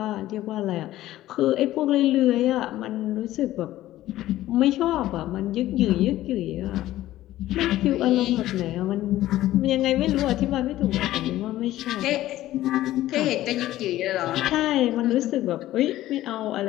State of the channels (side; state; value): right; quieter; 14.8 dB